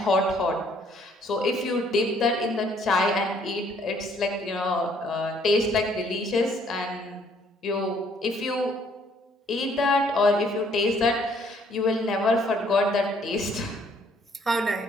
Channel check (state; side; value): normal; both; correlation 0.64